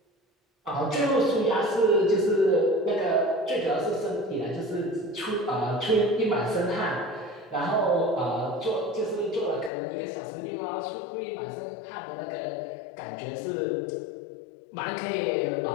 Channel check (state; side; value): drops out; right; at 9.7 s